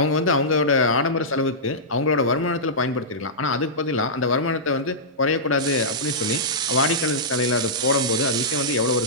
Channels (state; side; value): normal; both; correlation -0.14